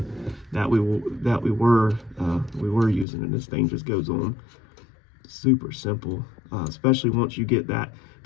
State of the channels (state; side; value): drops out; right; at 3.1 s